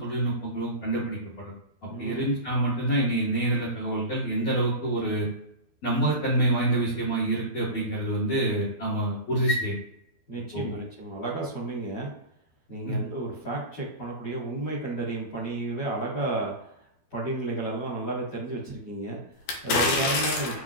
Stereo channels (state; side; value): late; right; 12 ms